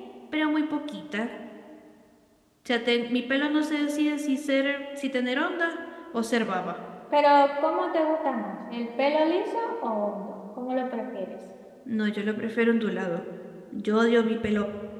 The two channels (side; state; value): both; identical; correlation 1.00